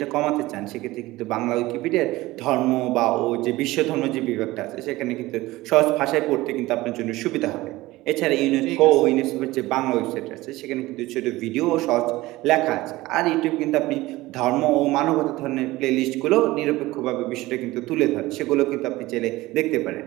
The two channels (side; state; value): left; quieter; 18.7 dB